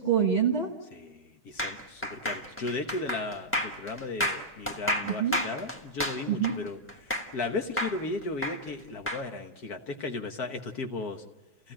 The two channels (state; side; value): normal; both; correlation -0.07